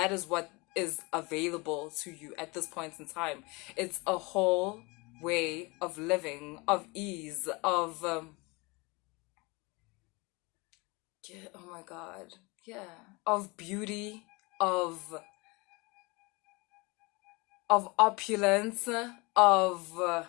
is what is available to you at this point in time. It's a whole way of living, of ease, of yeah, oh my God. Yeah. Of beauty, of opulence, of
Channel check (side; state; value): right; quieter; 26.3 dB